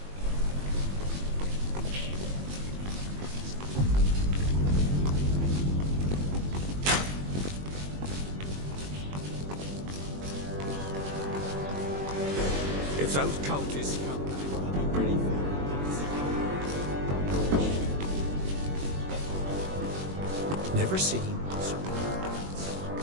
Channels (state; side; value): late; left; 21 ms